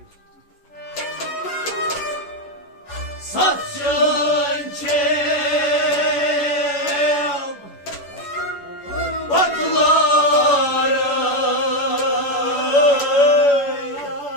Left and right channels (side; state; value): right; late; 11 ms